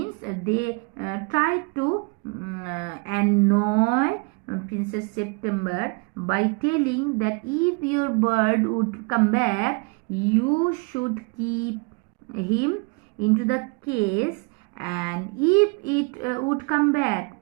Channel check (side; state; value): left; quieter; 32.0 dB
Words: they tried to annoy Princess September by telling that if your bird would come back, you should keep him into the case, and if it would come back,